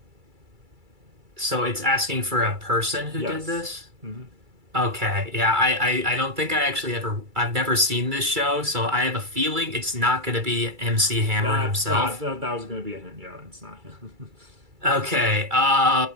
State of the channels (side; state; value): left; late; 2.3 ms